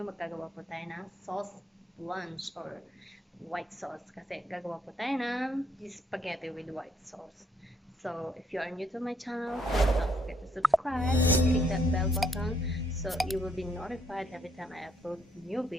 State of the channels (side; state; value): both; normal; correlation 0.70